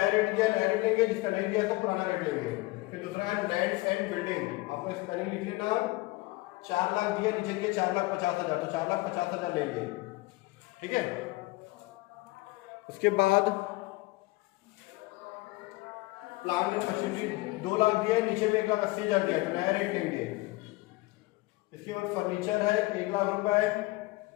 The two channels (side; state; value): right; quieter; 21.8 dB